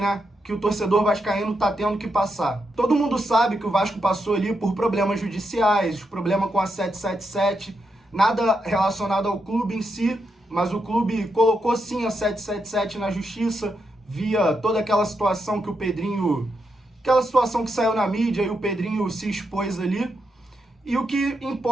Que o torcedor vascaíno tá tendo que passar. Todo mundo sabe que o Vasco passou ali por problemas judiciais, problema com a 777, nada relacionado ao clube em si, mas o clube colocou sim a 777 na justiça, via toda aquela situação que o Pedrinho, aquela situação que saiu na mídia e o Pedrinho se expôs ali. E o que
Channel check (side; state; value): both; normal; correlation 0.83